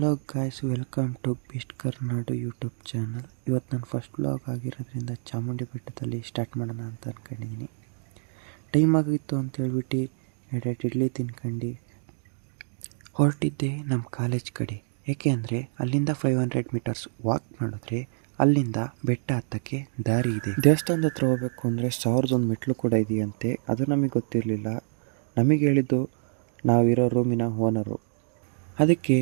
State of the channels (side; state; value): left; silent; digital silence